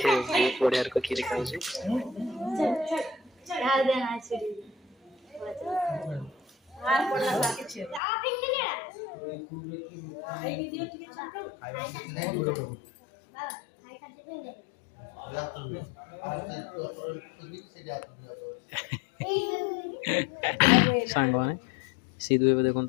बहुत बढ़िया खीरी खाऊ सांग मैंने सीधु ए देखो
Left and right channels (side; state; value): right; drops out; at 8.0 s